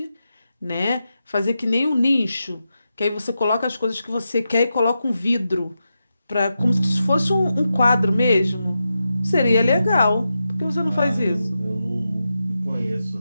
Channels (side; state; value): both; inverted; correlation -0.89